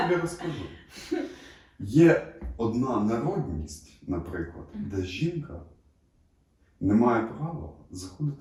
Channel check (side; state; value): both; identical; correlation 1.00